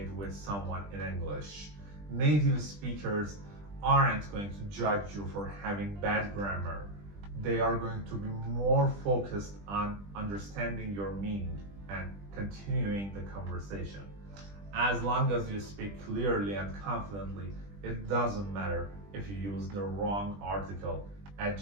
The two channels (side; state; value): left; late; 20 ms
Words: with someone in English. Native speakers aren't going to judge you for having bad grammar. They are going to be more focused on understanding your meaning and continuing the conversation. As long as you speak clearly and confidently, it doesn't matter if you use the wrong article,